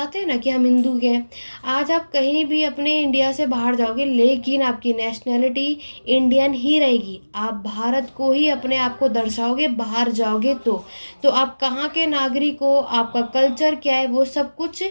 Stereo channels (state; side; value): inverted; both; correlation -1.00